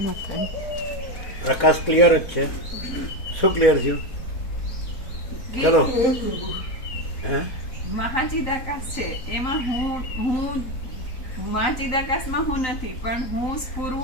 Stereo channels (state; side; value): late; right; 3.9 ms